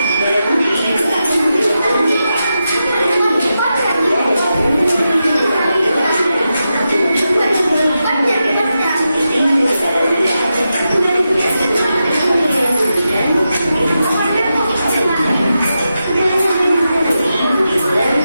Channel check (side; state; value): both; inverted; correlation -0.89